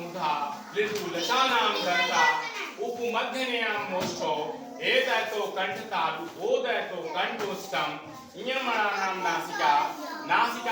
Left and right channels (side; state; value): both; identical; correlation 1.00